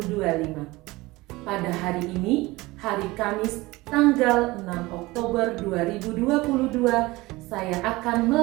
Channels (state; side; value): quieter; left; 20.7 dB